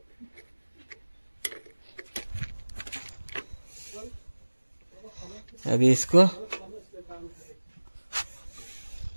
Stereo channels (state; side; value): inverted; both; correlation -1.00